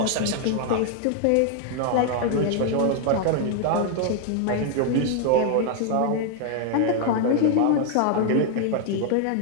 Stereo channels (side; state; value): both; different; correlation 0.00